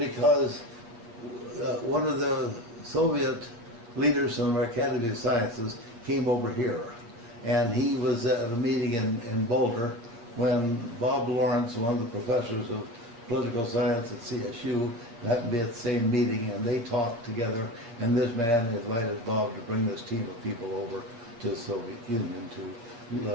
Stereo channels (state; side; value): late; left; 8.6 ms